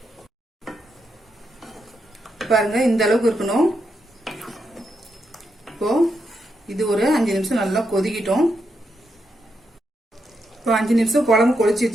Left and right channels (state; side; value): normal; both; correlation 0.83